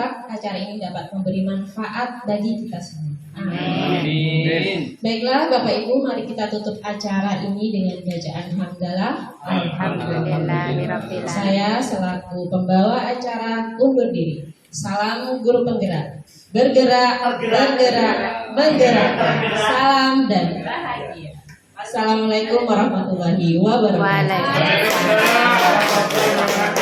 acara ini dapat memberi manfaat bagi kita semua. Amin. Baiklah Bapak Ibu, mari kita tutup acara ini dengan bacaan hamdalah. Alhamdulillah. Saya selaku pembawa acara undur diri. Salam guru penggerak. Bergerak, bergerak, menggerak. Salam dan bahagia. Assalamualaikum warahmatullahi wabarakatuh.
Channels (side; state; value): both; identical; correlation 1.00